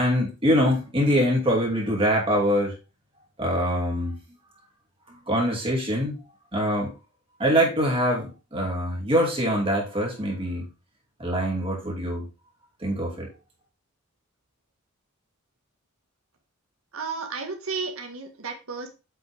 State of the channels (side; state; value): both; normal; correlation 0.45